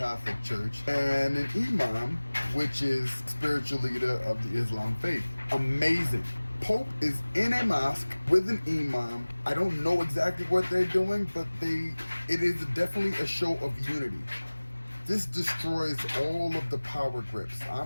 Church, and an imam, which is spiritual leader of the Islam faith. Amazing. Pope is in a mosque with an imam. I don't know exactly what they're doing, but it is definitely a show of unity. This destroys all of the power grips.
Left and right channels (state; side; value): inverted; both; correlation -1.00